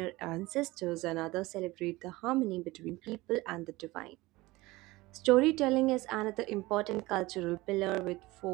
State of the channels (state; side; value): quieter; left; 20.4 dB